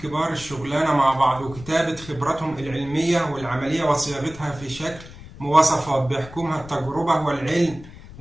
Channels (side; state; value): left; noise; rumble, 17 dB below the sound